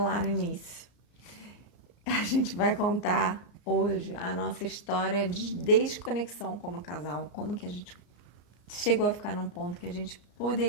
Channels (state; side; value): late; right; 34 ms